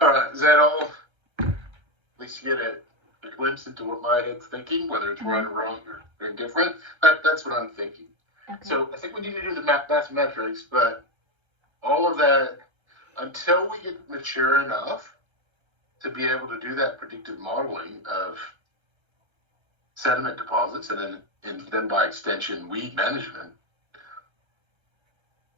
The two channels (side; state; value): left; late; 1.3 ms